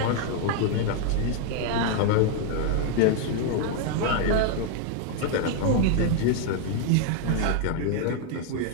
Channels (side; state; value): both; different; correlation 0.00